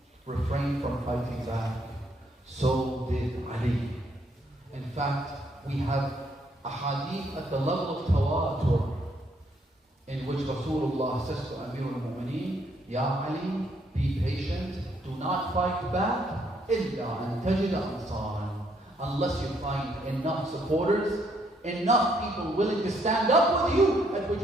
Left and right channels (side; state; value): both; normal; correlation 0.71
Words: refrained from fighting back. So did Ali. In fact, we have a hadith at the level of tawatur in which Rasulullah says to Amir al-Mu'mineen, Ya Ali, be patient, do not fight back, إِلَّا أَن تَجِدَ أَنصَارًا, unless you find enough supporters, enough people willing to stand up with you, at which